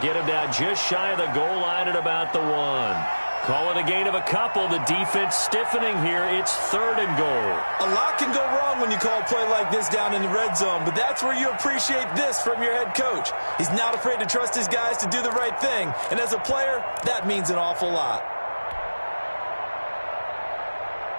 him down just shy of the goal line at about the 1. Call it a gain of a couple. The defense stiffening here. It's 3rd and goal. A lot can go wrong when you call a play like this down in the red zone, but that's where you appreciate this from your head coach. He's not afraid to trust his guys to do the right thing, and as a player, that means an awful lot.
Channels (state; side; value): inverted; both; correlation -1.00